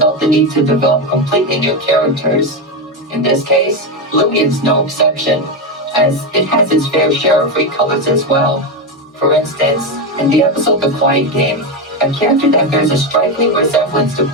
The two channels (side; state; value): both; normal; correlation 0.11